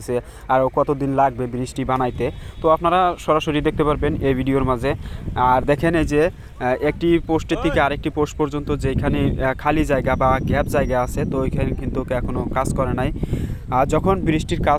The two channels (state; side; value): identical; both; correlation 1.00